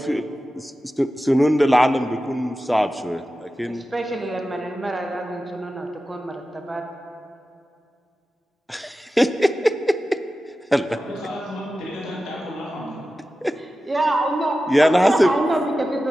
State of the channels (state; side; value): normal; both; correlation 0.94